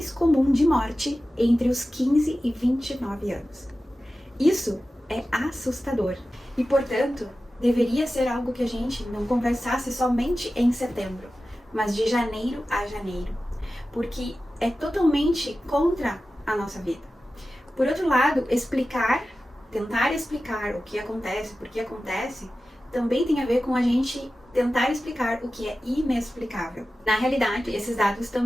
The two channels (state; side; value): normal; both; correlation 0.94